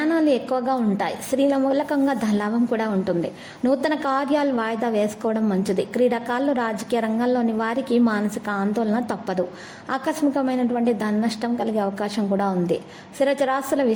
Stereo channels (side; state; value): both; identical; correlation 1.00